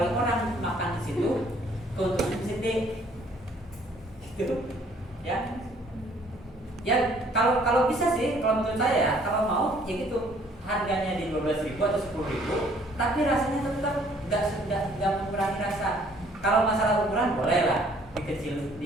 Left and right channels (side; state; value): both; normal; correlation 0.60